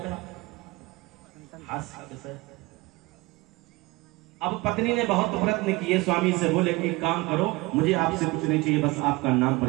है। अब पत्नी ने बहुत प्रयत्न किए, स्वामी से बोले कि काम करो, मुझे आपसे कुछ नहीं चाहिए, बस आपका नाम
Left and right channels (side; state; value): left; quieter; 22.8 dB